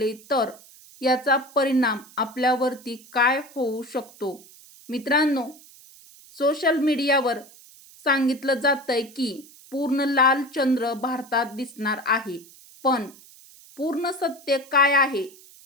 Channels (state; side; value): noise; right; hiss, 23 dB below the sound